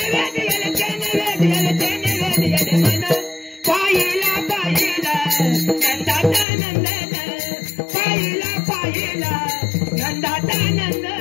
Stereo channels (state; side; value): drops out; right; at 6.5 s